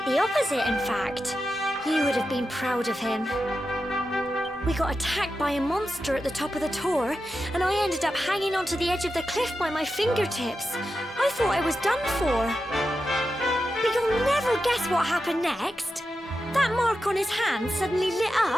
the opposite, in fact. You would have been proud of him. We got attacked by a monster at the top of the tower, and I ended up hanging onto the edge of the cliff by my fingertips. I thought I was done for. But you'll never guess what happened next. That mark on his hand suddenly lit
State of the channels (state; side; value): normal; both; correlation 0.90